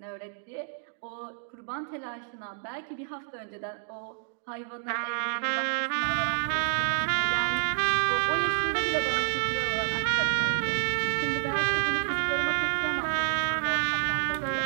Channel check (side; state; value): left; silent; digital silence